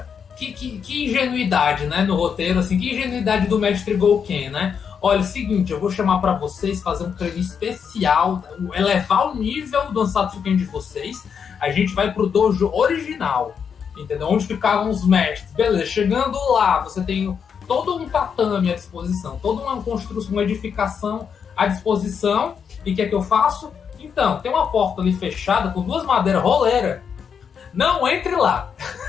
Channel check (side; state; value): right; quieter; 6.9 dB